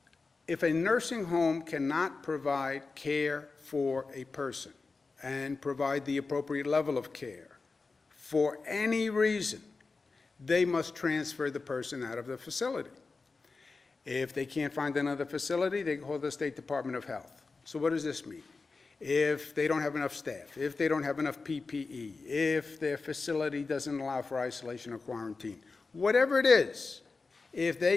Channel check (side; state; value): right; quieter; 4.1 dB